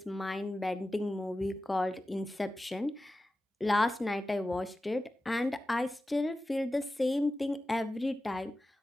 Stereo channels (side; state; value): both; normal; correlation 0.94